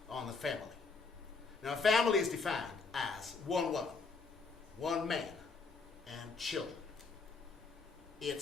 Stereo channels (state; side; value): quieter; right; 4.4 dB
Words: on the family. Now, a family is defined as one woman, one man, and children.